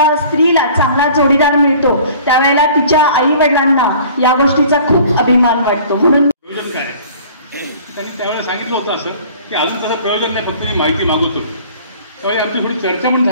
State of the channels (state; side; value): inverted; both; correlation -0.48